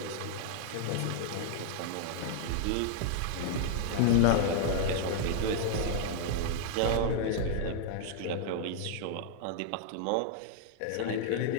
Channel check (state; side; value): different; both; correlation -0.01